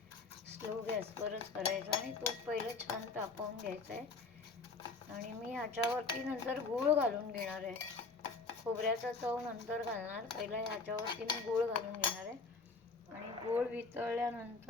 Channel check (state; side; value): quieter; right; 4.2 dB